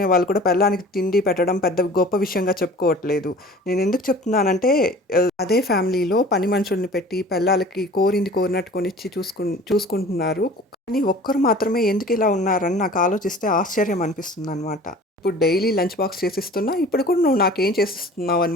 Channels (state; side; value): normal; both; correlation 0.44